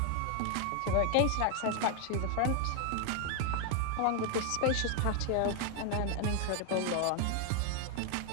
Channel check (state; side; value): different; both; correlation 0.00